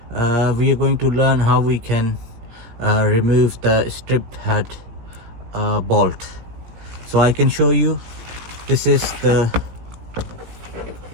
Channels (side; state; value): left; late; 18 ms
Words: We are going to learn how we can remove the stripped head bolt. So I can show you. This is the